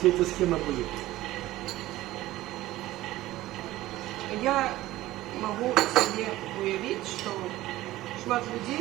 эта схема будет. Я могу себе уявить, что шмат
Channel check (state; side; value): quieter; left; 16.3 dB